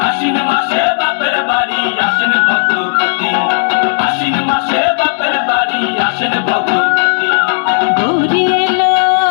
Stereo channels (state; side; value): silent; right; digital silence